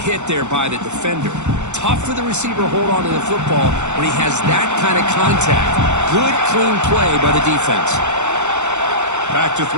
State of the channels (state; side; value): late; left; 0.83 ms